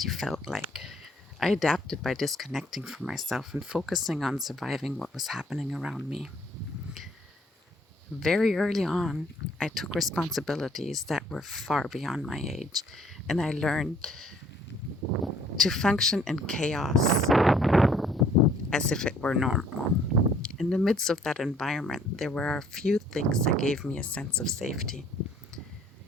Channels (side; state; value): both; normal; correlation 0.60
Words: felt like. I adapted by disconnecting from myself and focusing on surviving what was happening around me. Very early on, I took responsibilities that were far beyond my age, and I learned to function in chaos as if it were normal. In the midst of that environment, there were a few things that gave me a sense of safety.